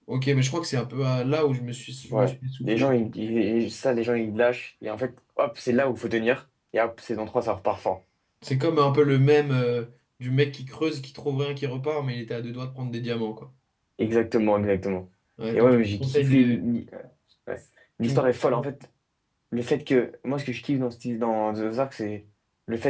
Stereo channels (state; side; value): identical; both; correlation 1.00